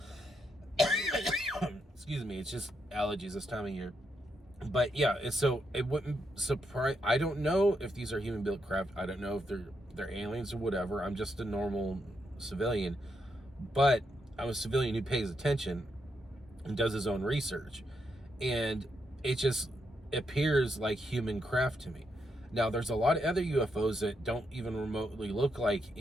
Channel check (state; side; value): normal; both; correlation 0.80